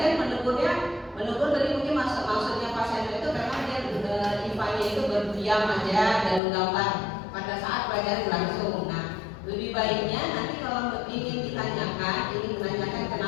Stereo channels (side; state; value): right; drops out; at 6.4 s